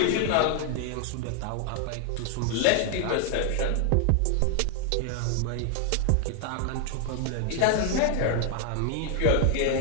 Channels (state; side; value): different; both; correlation 0.00